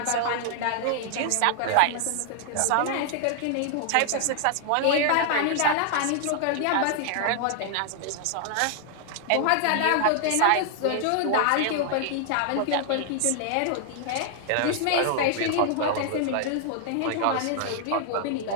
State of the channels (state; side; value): different; both; correlation 0.00